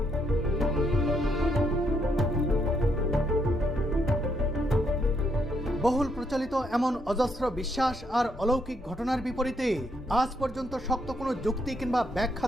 বহুল প্রচলিত এমন অজস্র বিশ্বাস আর অলৌকিক ঘটনার বিপরীতে আজ পর্যন্ত শক্ত কোনো যুক্তি কিংবা ব্যাখ্যা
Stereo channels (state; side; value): normal; both; correlation 0.75